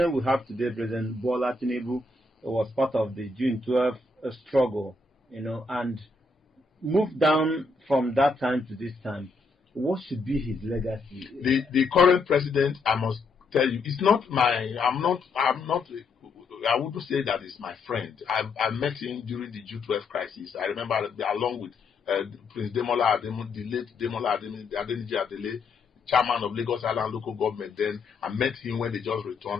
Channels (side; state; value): right; quieter; 3.6 dB